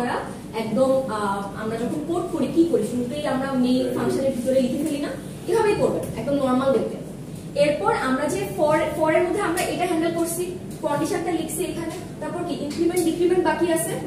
একদম আমরা যখন কোড করি কি করি, শুরুতেই আমরা মেইন ফাংশনের ভিতরে লিখে ফেলি না, এভাবেই করবেন একদম নরমাল দেখতে। এরপর আমরা যে ফর এর মধ্যে আমরা এটা হ্যান্ডেল করছি, কন্ডিশনটা লিখছি এখানে, তারপর কি ইনক্রিমেন্ট ডিক্রিমেন্ট বাকি আছে,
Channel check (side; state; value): both; identical; correlation 1.00